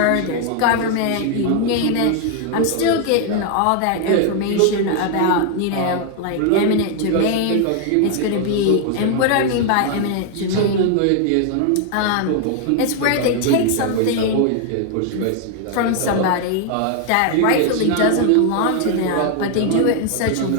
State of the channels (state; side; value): different; both; correlation 0.00